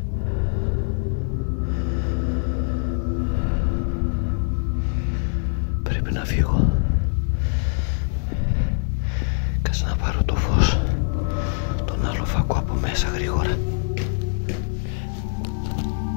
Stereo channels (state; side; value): silent; right; 63 dB below the other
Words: να φύγω. Κάτσε να πάρω το φως. Τον άλλο φακό από μέσα γρήγορα.